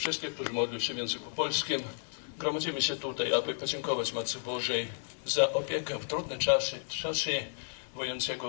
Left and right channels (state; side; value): silent; right; digital silence